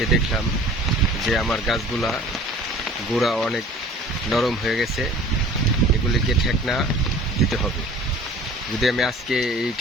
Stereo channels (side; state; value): both; normal; correlation 0.46